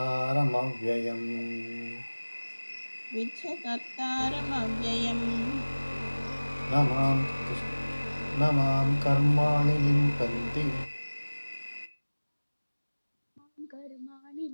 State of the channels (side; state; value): both; inverted; correlation -1.00